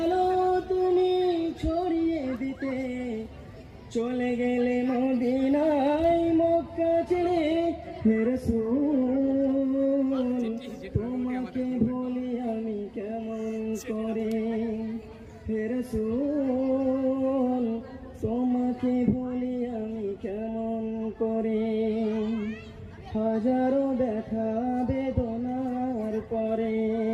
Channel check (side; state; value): both; identical; correlation 1.00